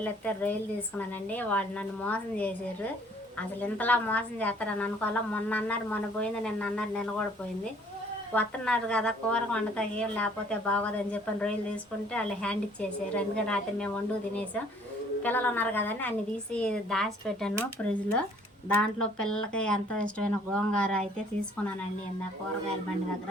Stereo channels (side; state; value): both; normal; correlation 0.58